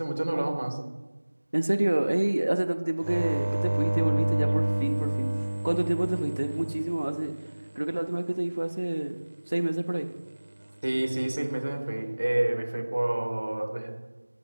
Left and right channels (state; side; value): inverted; both; correlation -1.00